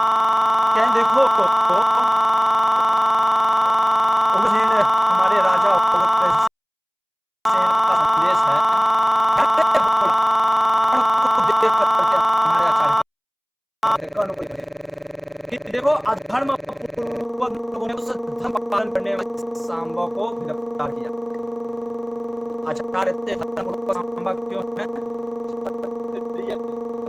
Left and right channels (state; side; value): identical; both; correlation 1.00